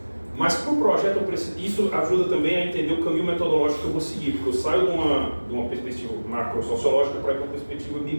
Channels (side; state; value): both; inverted; correlation -1.00